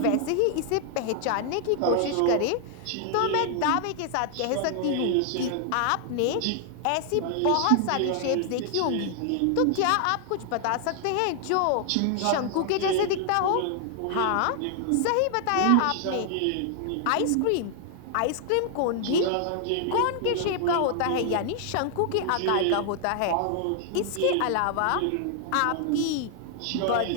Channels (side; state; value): both; different; correlation 0.00